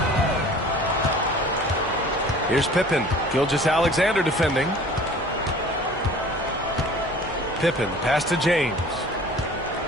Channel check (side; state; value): both; normal; correlation 0.46